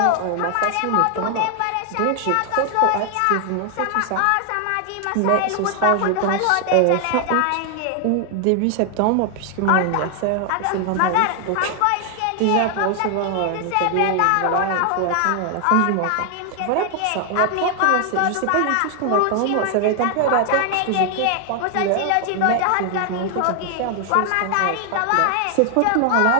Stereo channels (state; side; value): different; both; correlation 0.00